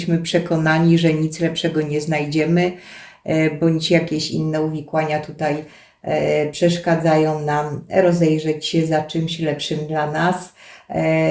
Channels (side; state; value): both; identical; correlation 1.00